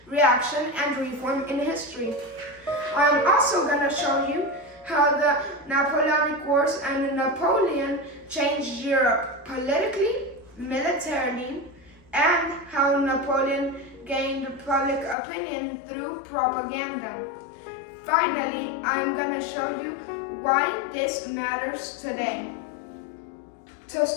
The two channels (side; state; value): right; drops out; at 15.2 s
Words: reaction, and reform in history. I'm also going to show you how the Napoleonic Wars and Napoleon changed Europe politically, militarily, and how Napoleon gained public opinion through propaganda. Finally, I'm going to show you why this matters today. To